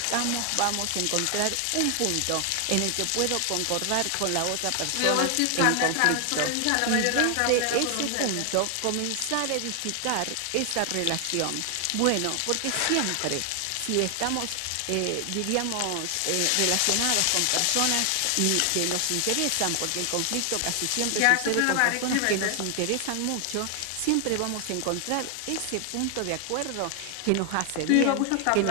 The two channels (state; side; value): different; both; correlation 0.00